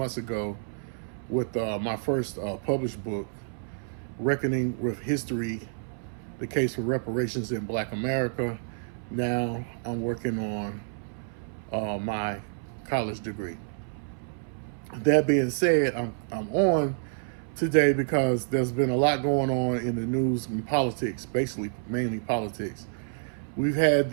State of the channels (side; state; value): left; silent; 59 dB below the other